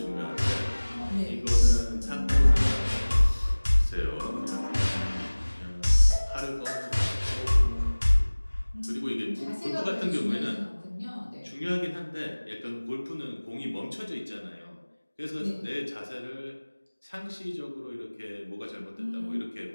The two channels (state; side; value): inverted; both; correlation -1.00